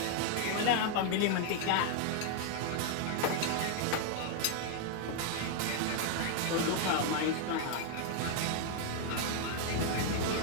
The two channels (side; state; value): both; different; correlation 0.00